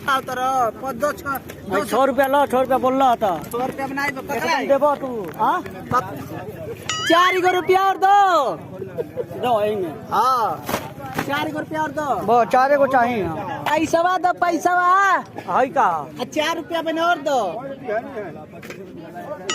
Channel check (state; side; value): identical; both; correlation 1.00